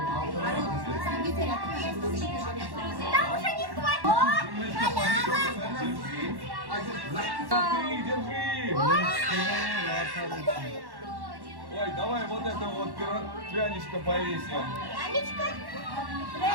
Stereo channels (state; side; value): late; left; 1.1 ms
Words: Там уже не хватит. О, халява. Держи. Ой, давай вот это вот пряничко повесим. Анечка.